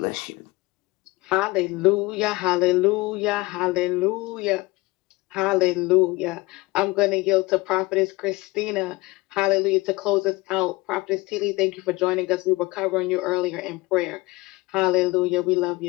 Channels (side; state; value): right; quieter; 22.2 dB